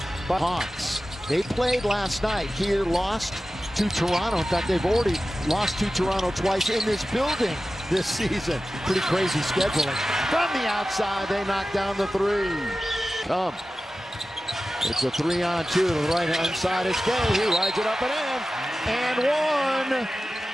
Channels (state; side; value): normal; both; correlation 0.94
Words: by Hawks. They played last night. Here lost to Toronto. In fact, they've already lost to Toronto twice in this building this season. Pretty crazy scheduling. From the outside, they knock down the three. It's a 3-on-2 to the right-hand side. It's Gay. He rides it up and in. And one.